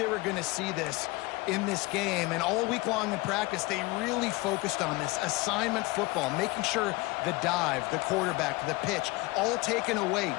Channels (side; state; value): right; quieter; 22.5 dB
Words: were going to see this in this game, and all week long in practice, they really focused on this assignment football, making sure the dive, the quarterback, the pitch, all taken away.